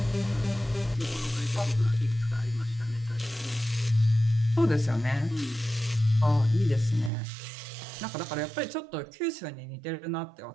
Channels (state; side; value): drops out; left; at 7.1 s